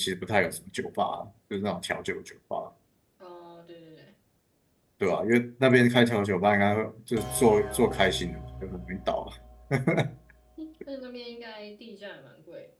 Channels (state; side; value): identical; both; correlation 1.00